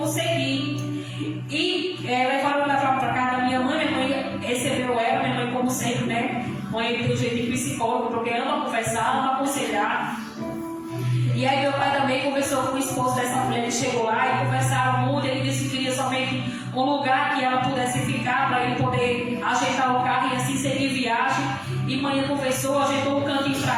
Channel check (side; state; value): both; identical; correlation 1.00